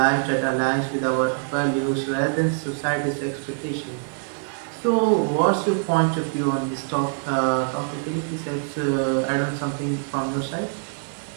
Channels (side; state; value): left; silent; 62 dB below the other